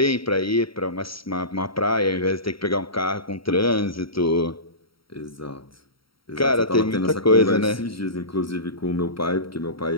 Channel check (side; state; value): right; late; 0.75 ms